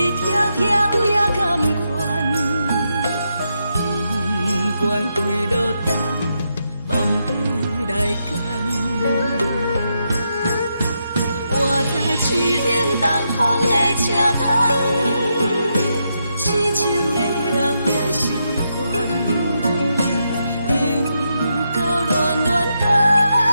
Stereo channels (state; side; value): inverted; both; correlation -0.82